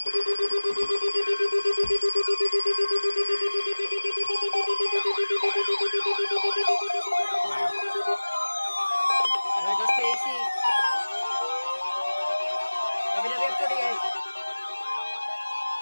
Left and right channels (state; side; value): inverted; both; correlation -1.00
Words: Wow. There goes Casey. WWF 38.